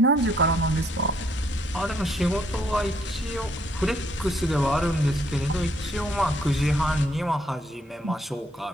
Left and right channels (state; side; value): normal; both; correlation 0.69